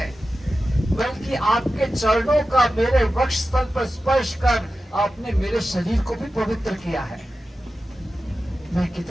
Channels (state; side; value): normal; both; correlation 0.93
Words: बल्कि आपके चरणों का मेरे वक्ष स्थल पर स्पर्श कर आपने मेरे शरीर को भी पवित्र किया है। मैं